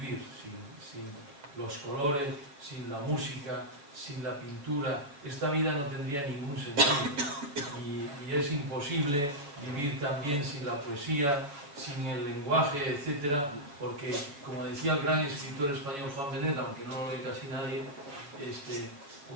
sin los colores, sin la música, sin la pintura. Esta vida no tendría ningún sentido, y es imposible vivir también sin la poesía, sin el lenguaje, etcétera, porque, como decía el gran escritor español Juan Benet, aunque no lo lee casi nadie,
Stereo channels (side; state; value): left; late; 7.0 ms